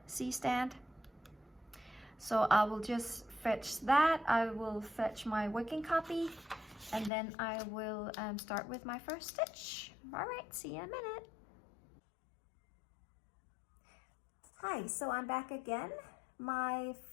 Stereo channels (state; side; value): drops out; right; at 7.1 s